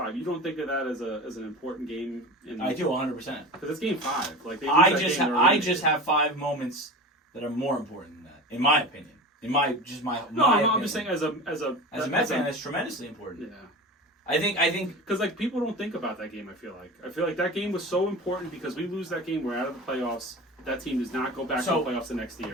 You don't think of that as an important game? I do 100%. Because it's game 5. Like they I lose that just game, they're I eliminated. just have 5 moments that are more important than that, in my opinion. No, I'm opinion. just saying as a As a Mets fan, that's tremendously important. Yeah. I think Because like people don't think about that game. I feel like that game was so important because we lose that game, we're out of the playoffs. That team does not go back So, to the playoffs the next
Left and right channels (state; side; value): normal; both; correlation 0.31